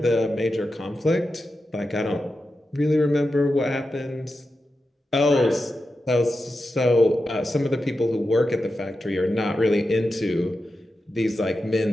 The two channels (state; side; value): normal; both; correlation 0.90